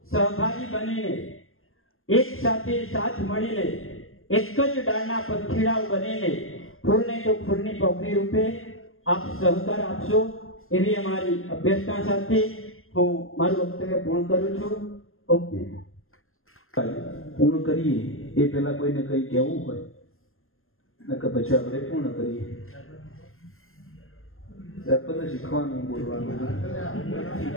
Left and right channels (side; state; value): right; late; 0.61 ms